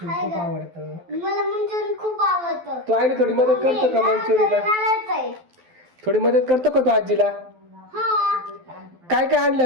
खूप आवडतं. मला मंचुरियन खूप आवडतं. तू आईला थोडी मदत करतो का मंचुरियनला? थोडी मदत करतो का तू आजीला? काय काय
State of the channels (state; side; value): late; left; 12 ms